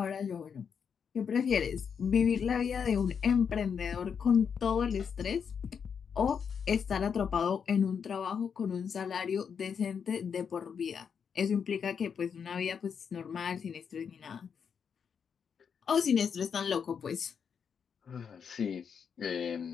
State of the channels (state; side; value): quieter; right; 6.9 dB